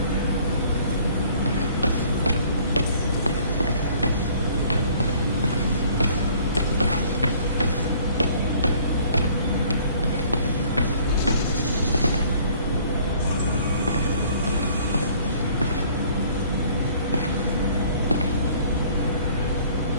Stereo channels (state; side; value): inverted; both; correlation -0.56